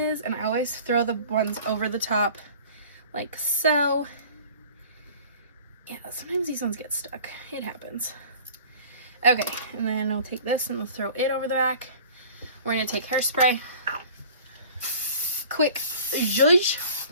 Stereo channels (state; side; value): inverted; both; correlation -0.46